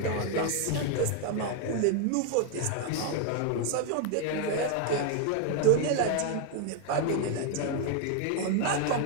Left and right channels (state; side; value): different; both; correlation 0.01